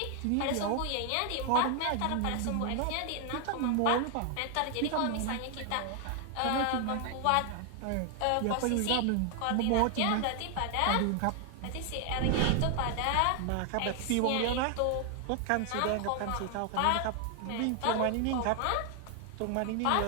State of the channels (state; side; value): different; both; correlation 0.00